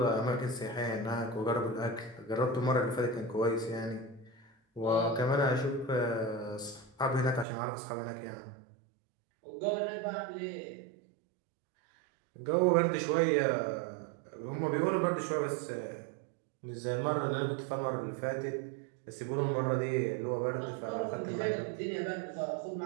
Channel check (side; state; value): left; drops out; at 7.5 s